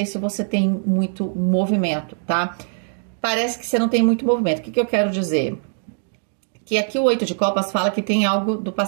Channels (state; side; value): silent; left; digital silence